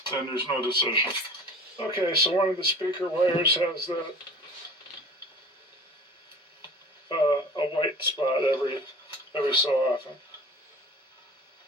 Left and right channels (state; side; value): normal; both; correlation 0.41